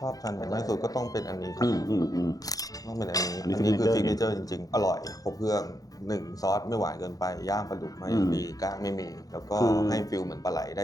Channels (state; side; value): late; right; 0.18 ms